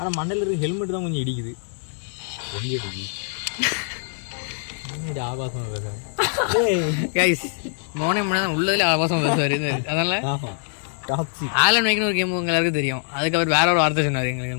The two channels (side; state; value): right; silent; digital silence